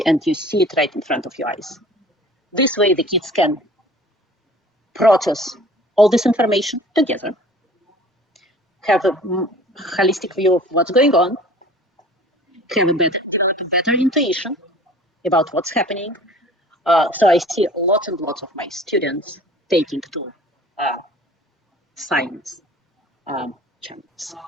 and you see it right in front of your eyes. This way, the kids can process all this information together, have a holistic view of what's going on, have a better intuition about what's happening. So I see lots and lots of my students taking to science channels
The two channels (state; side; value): normal; both; correlation 0.47